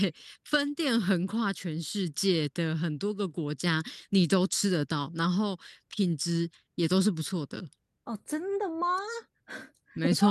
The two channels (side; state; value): both; identical; correlation 1.00